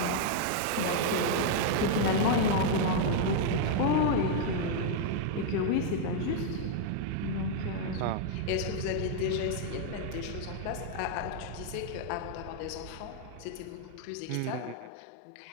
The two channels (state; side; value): different; both; correlation 0.00